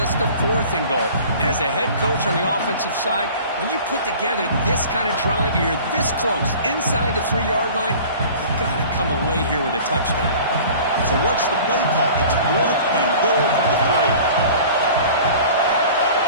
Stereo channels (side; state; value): both; inverted; correlation -0.44